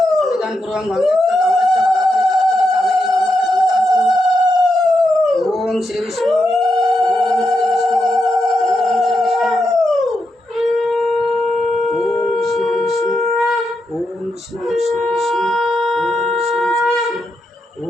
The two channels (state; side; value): normal; both; correlation 0.84